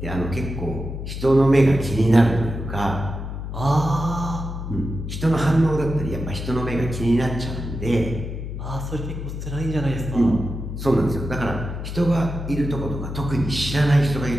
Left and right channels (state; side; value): noise; left; hum, 6 dB below the sound